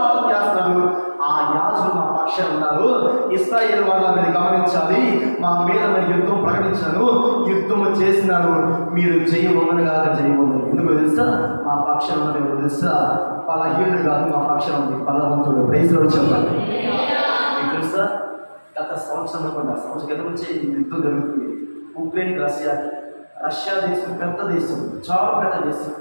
చేస్తున్నారు. ఆ యాజకులు మా పక్షాన ఉన్నారు. ఇశ్రాయేలు వాళ్ళని మీరు గమనించాలి. మా మీద నేను యుద్ధం ప్రకటించాను, యుద్ధం చేసినాను, మీరు చేయబోమని కాక చేయబోమని. ఎందుకు తెలుసా, మా పక్షాన ఉన్నది తెలుసా, బలహీనుడు కాదు, మా పక్షాన ఉంది బలవంతుడు. ప్రైజ్లో చెప్పాలి. మీకు తెలుసా, గత సంవత్సరం క్రితం నుంచి యుద్ధం జరుగుతుంది. ఉక్రెయిన్ రష్యా దేశం పెద్ద దేశం, చాలా పెద్ద దేశం,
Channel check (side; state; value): both; inverted; correlation -1.00